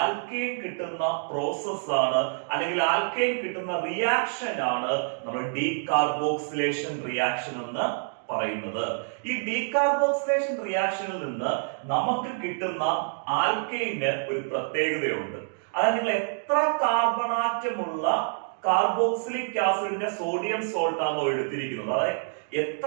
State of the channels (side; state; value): left; silent; digital silence